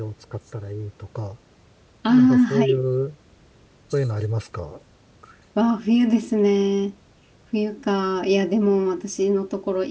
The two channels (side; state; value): both; identical; correlation 1.00